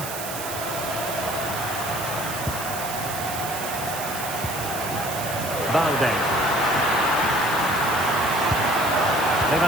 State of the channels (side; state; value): right; noise; hiss, 8 dB below the sound